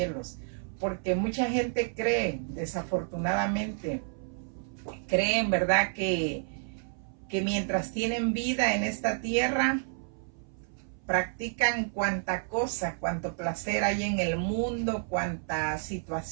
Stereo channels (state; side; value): silent; left; 58 dB below the other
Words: Porque mucha gente cree, desafortunadamente, creen, ¿verdad?, que mientras tienen vida en esta tierra, practican cuanta cosa, cuanto placer hay en el mundo, cuanta